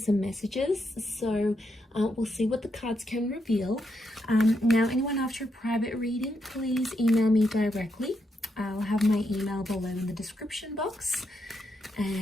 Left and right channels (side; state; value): both; normal; correlation 0.81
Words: messages. So we'll see what the cards can reveal. Now, anyone after a private reading, please email me directly. I'll have my email below in the description box,